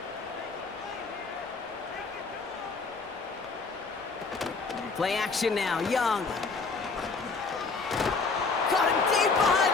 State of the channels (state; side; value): quieter; right; 4.4 dB